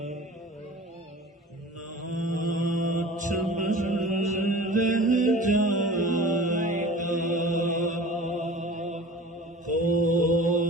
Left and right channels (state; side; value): normal; both; correlation 0.40